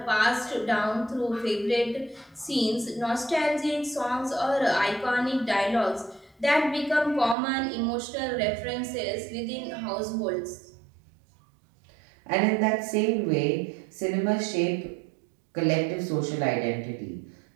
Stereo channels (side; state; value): left; drops out; at 7.4 s